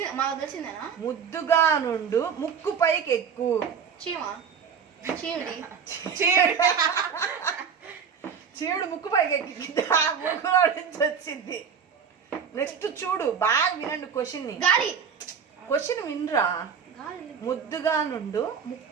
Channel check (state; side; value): quieter; left; 6.8 dB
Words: మాకు తెలిసిందేనా? ముద్దుగా నుండు ముక్కు పైకెక్కు. చీవుడు ముక్కు పైకెక్కి ముక్కులో నుంచి వచ్చింది. నెక్స్ట్ చూడు, బాగా వినండి క్వశ్చన్ వినరా. ముద్దుగా నుండు